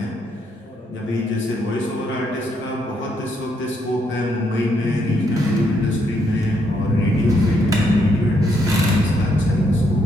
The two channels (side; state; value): both; normal; correlation 0.74